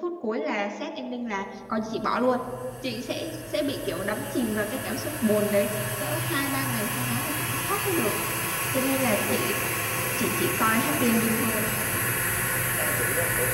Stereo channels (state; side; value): identical; both; correlation 1.00